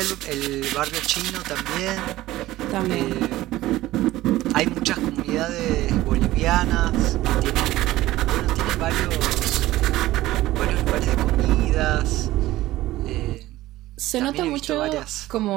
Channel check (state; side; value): quieter; left; 16.3 dB